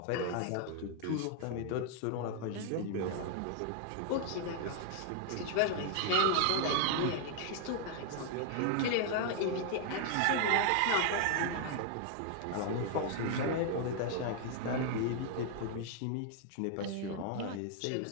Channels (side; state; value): both; different; correlation 0.00